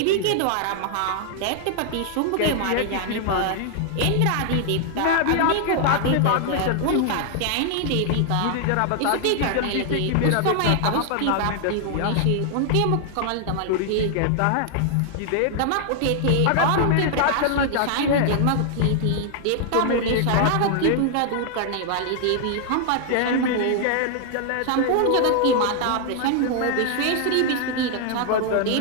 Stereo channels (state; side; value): different; both; correlation 0.00